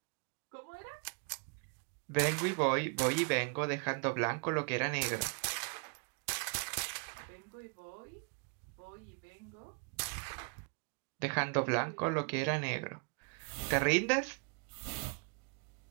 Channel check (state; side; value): quieter; left; 37.9 dB